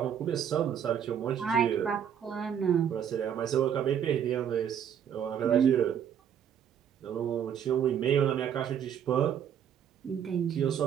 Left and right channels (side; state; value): left; quieter; 8.7 dB